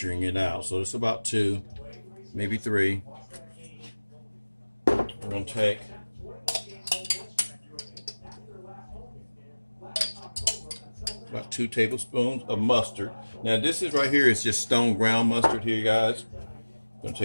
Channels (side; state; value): both; inverted; correlation -1.00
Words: it out, so it's about 2, maybe 3. We're gonna take about 2 tablespoons of mustard. Now this is right here is just stone ground mustard here, guys. I'm gonna